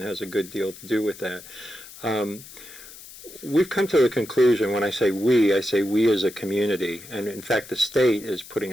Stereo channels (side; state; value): left; noise; hiss, 17 dB below the sound